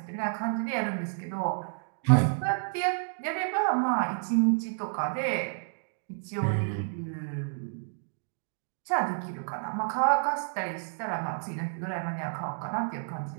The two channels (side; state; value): left; silent; digital silence